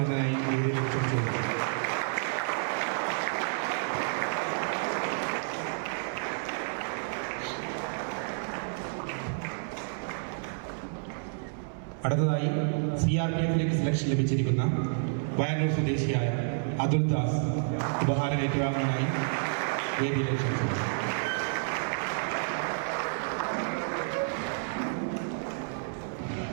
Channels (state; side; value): silent; left; digital silence